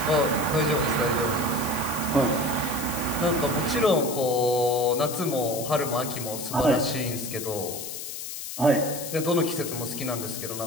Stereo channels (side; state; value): left; noise; hiss, 8 dB below the sound